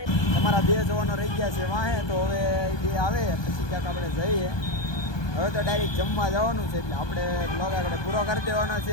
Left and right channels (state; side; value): late; right; 1.2 ms